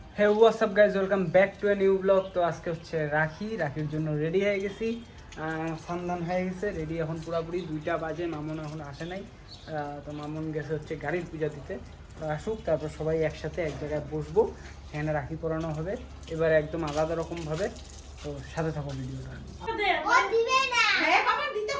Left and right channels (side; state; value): both; identical; correlation 1.00